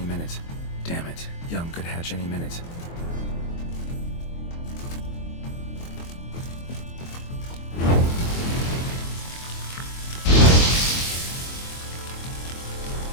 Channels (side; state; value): right; late; 23 ms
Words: minute. Damn it. Young could hatch any minute.